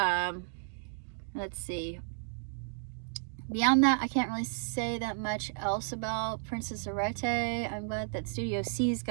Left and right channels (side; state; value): left; silent; digital silence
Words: let's see. Beyond that, I can't really say that much else about Princess Arete. I'm glad that Studio C's